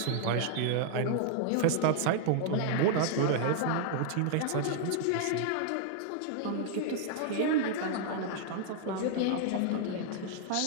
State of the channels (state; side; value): different; both; correlation 0.00